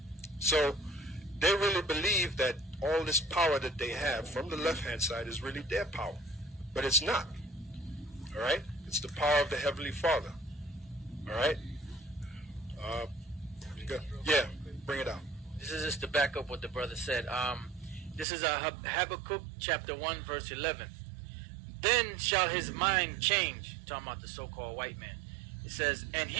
So they really believe that all this power that they have from the left-hand side is really their power. But it's not. All right? It's the power of the Heavenly Father. All right? Yeah, bring it out. This is just to back up what the brother said. This is Habakkuk chapter 1, verse 11. Then shall his mind change, talking about the so-called white man. It says, and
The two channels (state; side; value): drops out; left; at 18.2 s